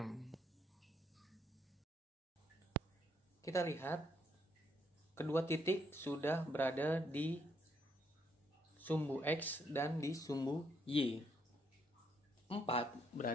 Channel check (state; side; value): normal; both; correlation 0.73